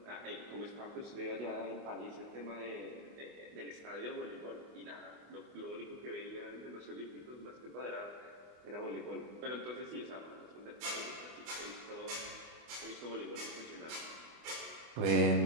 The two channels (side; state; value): left; late; 25 ms